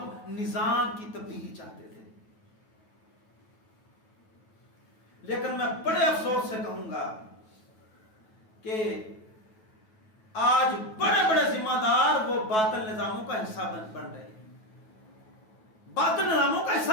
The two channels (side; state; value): right; late; 9.2 ms